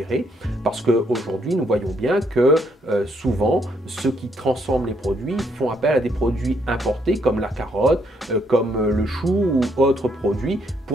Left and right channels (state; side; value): normal; both; correlation 0.72